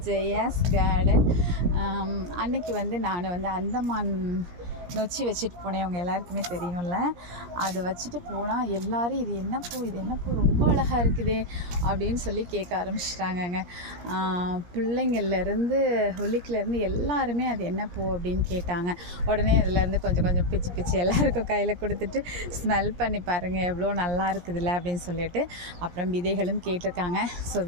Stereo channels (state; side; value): late; left; 17 ms